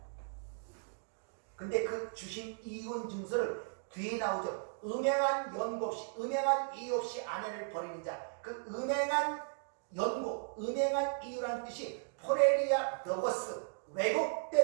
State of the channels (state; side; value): silent; left; digital silence